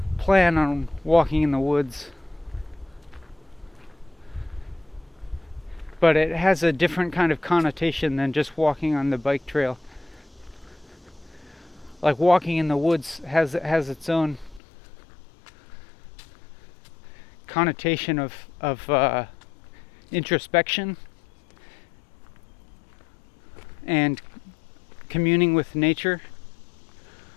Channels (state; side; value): drops out; right; at 14.6 s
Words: plan on walking in the woods, but it has a different kind of connotation than just walking on the bike trail. Like, walking in the woods has its own connotation of introspection and communing with nature.